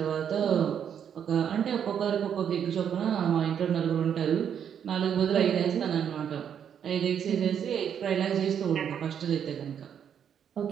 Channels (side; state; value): left; quieter; 8.4 dB